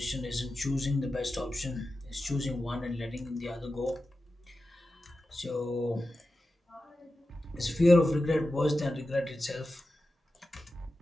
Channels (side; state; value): both; normal; correlation 0.92